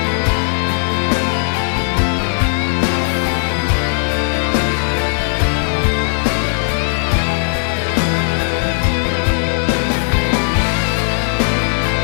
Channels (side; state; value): right; silent; 68 dB below the other